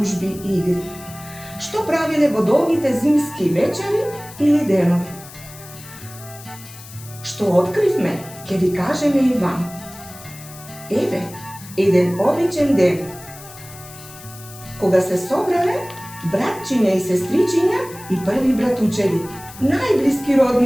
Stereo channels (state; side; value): noise; left; hiss, 17 dB below the sound